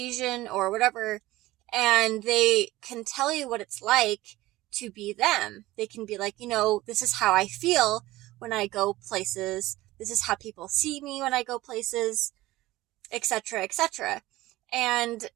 or whatever, and they can tell you what it's like to be them. They can be like, this is how I feel when I go places. This is how people see me when I go places, etc., etc. And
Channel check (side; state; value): left; quieter; 17.6 dB